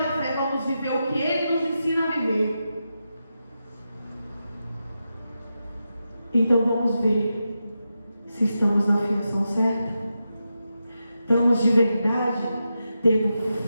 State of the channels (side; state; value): both; inverted; correlation -0.88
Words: fé vamos viver o que Ele nos ensina a viver. Então vamos ver se estamos na afirmação certa. Estamos de verdade tendo